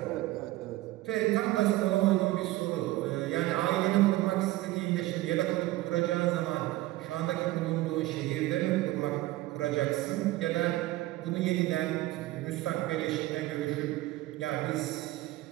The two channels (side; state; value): left; quieter; 17.5 dB